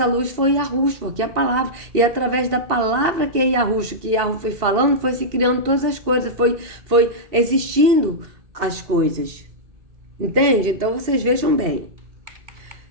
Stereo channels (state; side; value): late; left; 2.7 ms